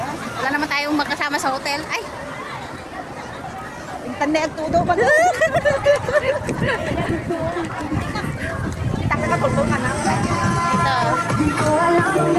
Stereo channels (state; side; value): identical; both; correlation 1.00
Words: Wala naman tayong magkasama sa hotel. Ay! Yung tanda ang tudo ba? Kita ka tulungan na. Ito.